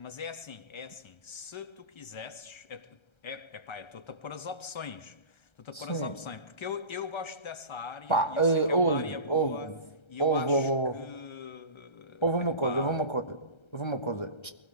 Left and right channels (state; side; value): late; right; 1.3 ms